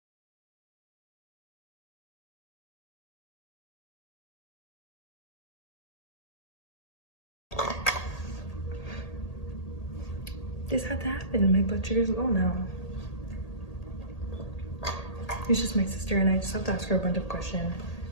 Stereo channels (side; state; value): right; late; 1.8 ms